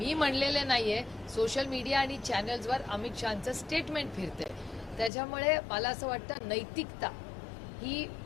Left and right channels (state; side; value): drops out; right; at 5.1 s